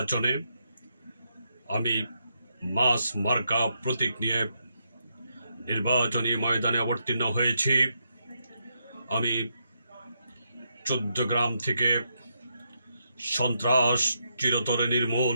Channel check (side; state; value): both; inverted; correlation -0.80